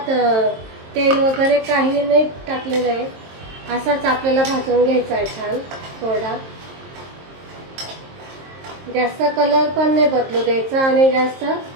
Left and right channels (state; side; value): late; left; 23 ms